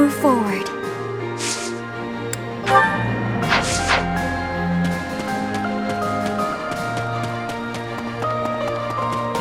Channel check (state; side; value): identical; both; correlation 1.00